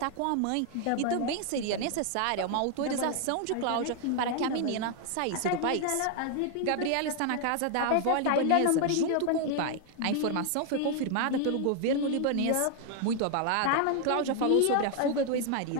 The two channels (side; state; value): both; different; correlation 0.00